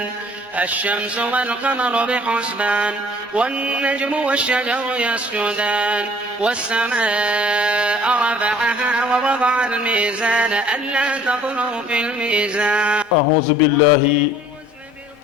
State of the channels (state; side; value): normal; both; correlation 0.53